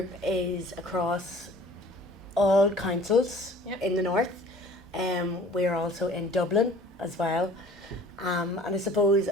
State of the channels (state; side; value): normal; both; correlation 0.49